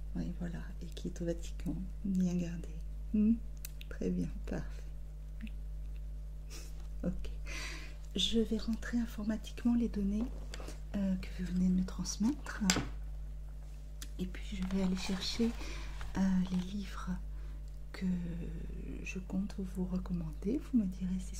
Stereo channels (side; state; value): both; identical; correlation 1.00